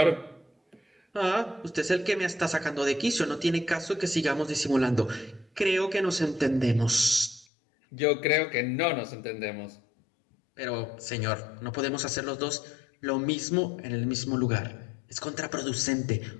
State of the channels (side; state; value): right; drops out; at 7.5 s